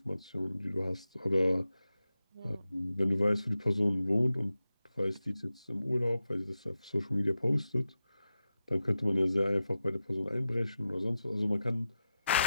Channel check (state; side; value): inverted; both; correlation -0.91